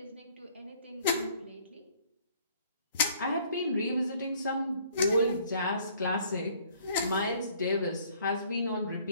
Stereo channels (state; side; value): inverted; both; correlation -0.59